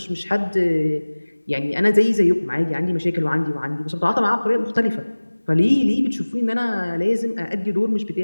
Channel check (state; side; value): inverted; both; correlation -1.00